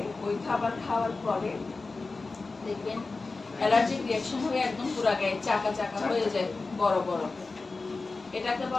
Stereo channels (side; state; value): right; quieter; 3.8 dB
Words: ওই খাবার খাওয়ার পরে দেখবেন অ্যালার্জিক রিঅ্যাকশন হয়ে একদম পুরো গায়ে চাকা চাকা হয়ে যায়, বড় বড়, এটাকে